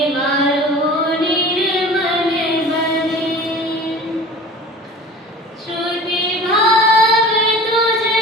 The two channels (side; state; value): both; normal; correlation 0.39